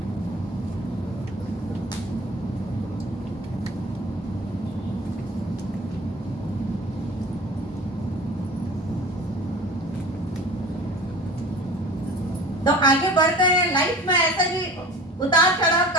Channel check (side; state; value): both; normal; correlation 0.40